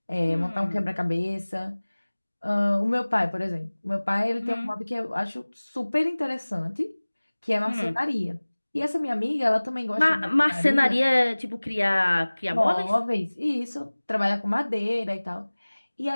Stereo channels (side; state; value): both; inverted; correlation -1.00